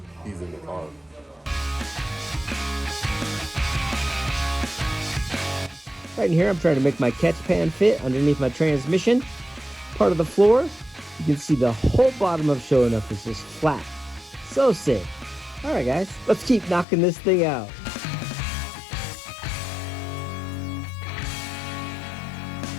he's in the car. Right in here, I'm trying to make my catch pan fit underneath my transmission. Part of the floor, you can see the whole bottom of Sho'nuff is just flat. So sick. All right, guys, let's keep knocking this thing out.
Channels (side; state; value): right; drops out; at 16.9 s